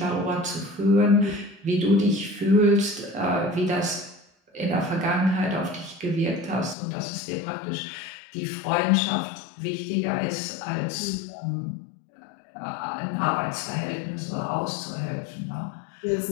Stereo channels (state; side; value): drops out; right; at 6.8 s